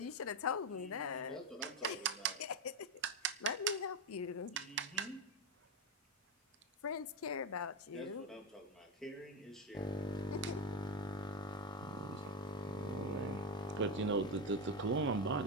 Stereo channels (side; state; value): both; normal; correlation 0.10